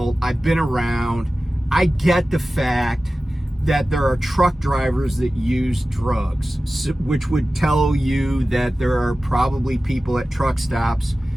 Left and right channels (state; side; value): normal; both; correlation 0.95